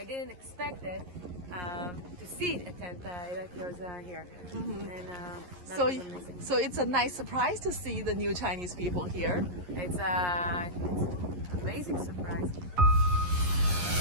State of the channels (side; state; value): left; late; 11 ms